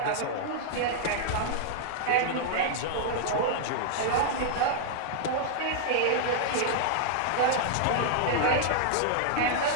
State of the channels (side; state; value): both; different; correlation -0.01